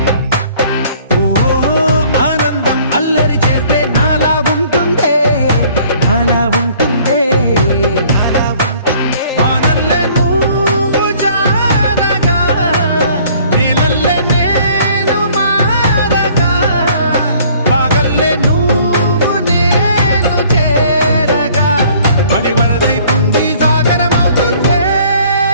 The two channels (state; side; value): inverted; both; correlation -0.56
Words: ఓ ఆనందం అల్లరి చేస్తే నాలా ఉంటుందే నాలా ఉంటుందే వానల్లే నువ్వు జారగా నీలల్లే నేను మారగా పగల్లే నువ్వు నేను చేరగా పడి వరదై పొంగి సాగరమవుతుందే